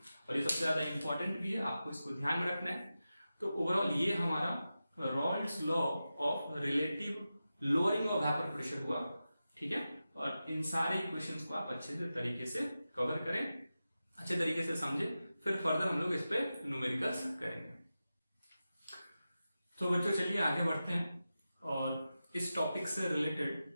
और ये सबसे ज्यादा इंपॉर्टेंट भी है, आपको इसको ध्यान में रखना है। तो ओवरऑल ये हमारा Rawls law of relative lowering of vapour pressure हुआ, ठीक है। और इन सारे इक्वेशंस को आप अच्छे से तरीके से कवर करें, अच्छे तरीके से समझे, फिर फर्दर हम लोग इस पे न्यूमेरिकल्स करेंगे। तो बच्चों चलिए आगे बढ़ते हैं और इस टॉपिक से रिलेटेड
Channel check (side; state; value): both; inverted; correlation -0.93